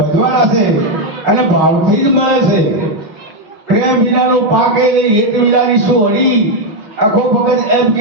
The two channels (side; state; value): left; late; 5.9 ms